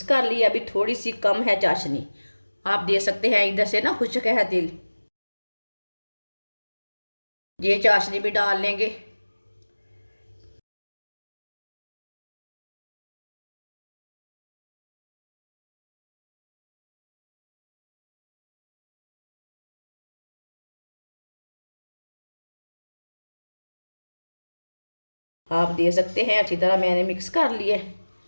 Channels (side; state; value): both; inverted; correlation -1.00